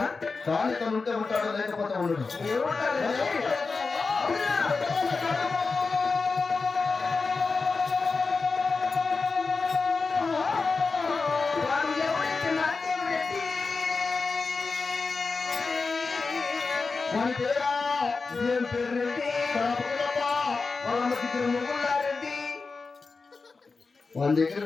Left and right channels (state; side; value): quieter; right; 4.3 dB